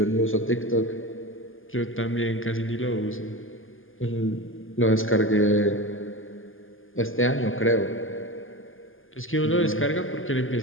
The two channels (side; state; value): right; late; 0.59 ms